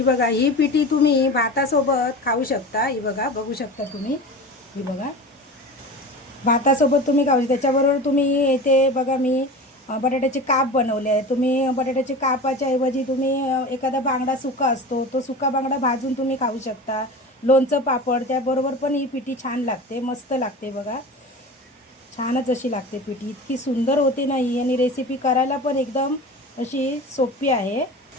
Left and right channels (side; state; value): both; normal; correlation 0.32